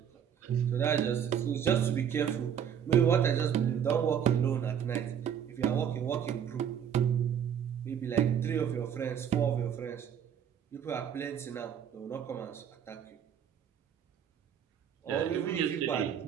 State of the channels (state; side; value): quieter; left; 8.6 dB